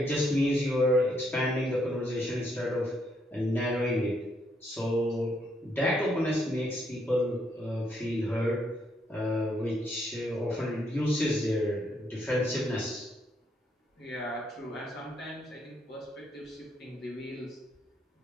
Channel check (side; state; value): both; normal; correlation 0.74